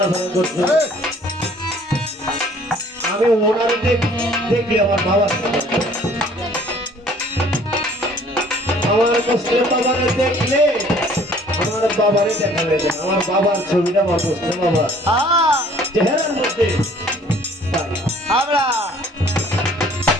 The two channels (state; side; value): normal; both; correlation 0.56